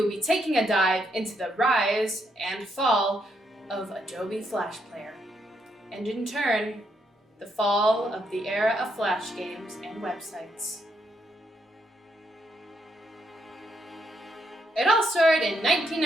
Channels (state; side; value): normal; both; correlation 0.77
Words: be taking a dive into the rise and fall of Adobe Flash Player, and in turn, the fall of the era of Flash games and websites. It all started in